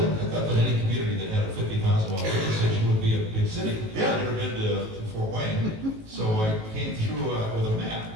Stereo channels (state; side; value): late; left; 18 ms